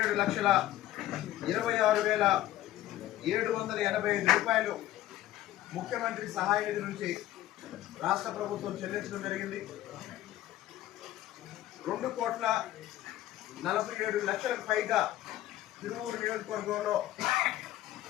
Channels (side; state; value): right; quieter; 14.2 dB